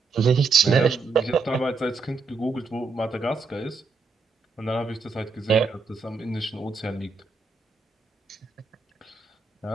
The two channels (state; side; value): quieter; left; 4.4 dB